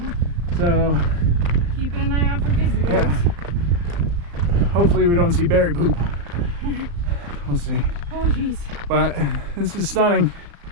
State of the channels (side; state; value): left; late; 35 ms